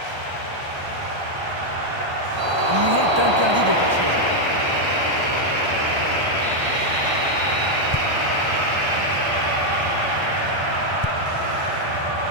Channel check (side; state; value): left; late; 1.3 ms